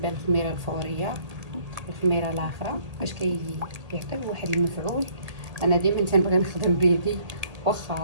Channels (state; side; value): late; left; 1.6 ms